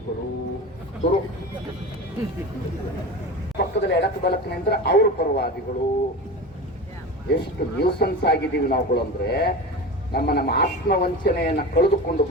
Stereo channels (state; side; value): normal; both; correlation 0.29